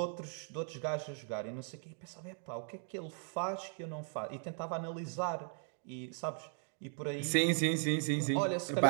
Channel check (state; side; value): silent; left; 53 dB below the other